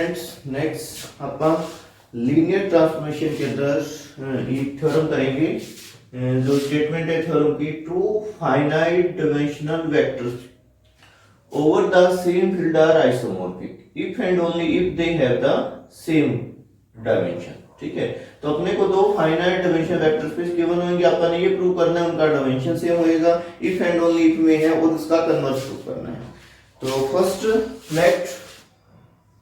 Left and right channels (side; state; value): both; identical; correlation 1.00